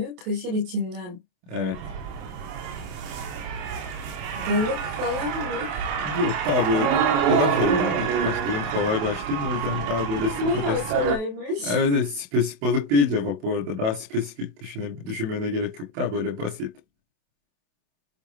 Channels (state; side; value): late; left; 28 ms